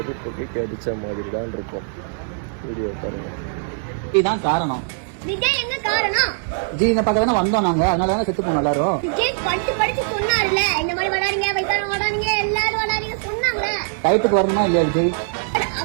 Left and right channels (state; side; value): silent; left; digital silence